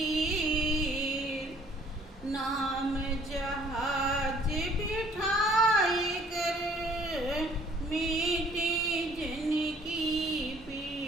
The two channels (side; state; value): both; normal; correlation 0.59